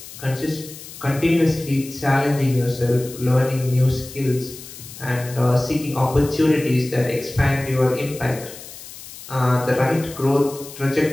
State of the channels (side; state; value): left; noise; hiss, 15 dB below the sound